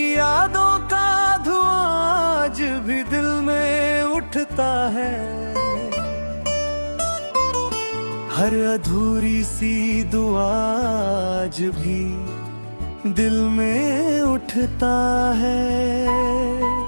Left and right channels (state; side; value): inverted; both; correlation -1.00